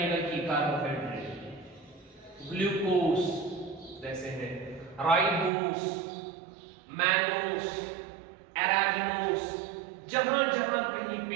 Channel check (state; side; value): drops out; left; at 5.5 s